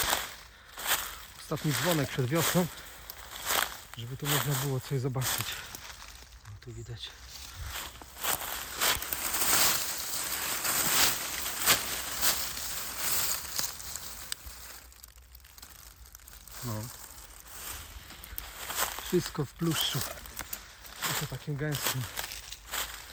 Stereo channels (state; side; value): identical; both; correlation 1.00